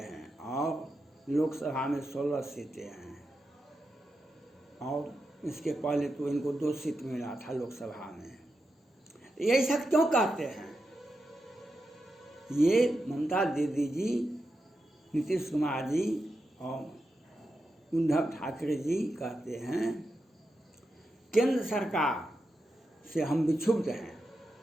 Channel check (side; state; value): both; normal; correlation 0.88